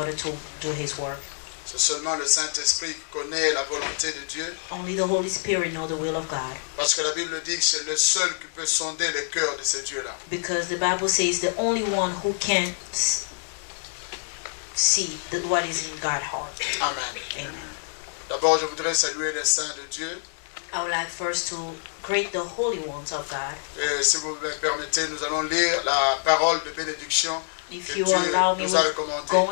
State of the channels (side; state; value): right; silent; 61 dB below the other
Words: to do His work. C'est seulement le Saint-Esprit qui connaît la volonté de Dieu. Only the Holy Spirit knows the will of God. Parce que la Bible dit que c'est le seul qui peut sonder le cœur de ce Dieu-là. Because the Bible says the only one who can see what is in God's heart. Amen. Amen. D'abord, je voudrais saluer les saints de Dieu. I would like first to greet the holy ones of God. Et si vous me permettez, nous allons lire la parole de bénédiction If que you Dieu allow me, nous a we're recommandée.